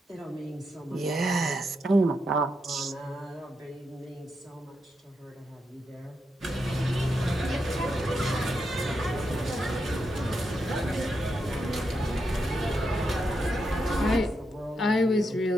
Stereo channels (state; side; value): normal; both; correlation 0.84